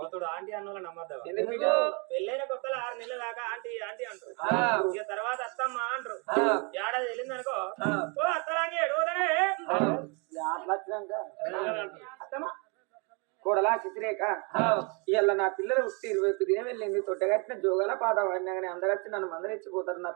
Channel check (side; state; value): left; quieter; 33.0 dB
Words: ఆంటీ అన్న నమ్మద్దాం పెళ్ళైన కొత్తలో 6 నెలల దాకా ఆంటీ ఆంటీ అంటారు ఇక తర్వాత అత్తమ్మ అంటారు ఏడాది వెళ్ళింది అనుకో ఓ అత్తలాంటి ఎడుగుదనే అత్తమ్మ కోడలా చిత్రేక ఇవాళ నా పిల్లలు పుట్టి 21 దినం వెళ్ళింది తొట్టగట్టిన జోగాల పాట వాడినా కానీ అందరొచ్చి నన్ను మందరిచ్చిపోతారు నా